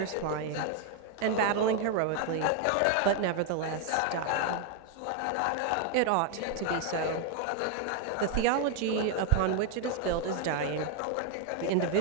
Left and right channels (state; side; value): different; both; correlation 0.01